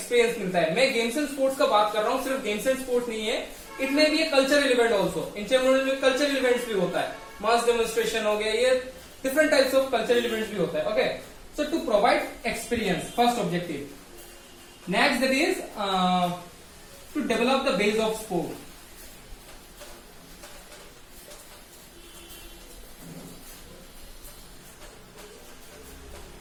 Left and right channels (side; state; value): both; identical; correlation 1.00